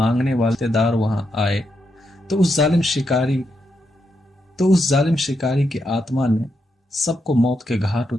वाले रिश्तेदार वहां आए तो उस जालिम शिकारी की आत्मा ने सबको मौत के घाट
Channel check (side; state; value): both; normal; correlation 0.82